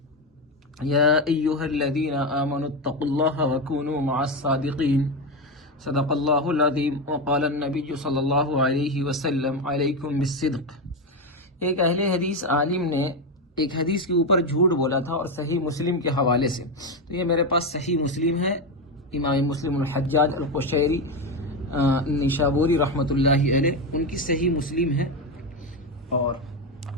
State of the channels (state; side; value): normal; both; correlation 0.12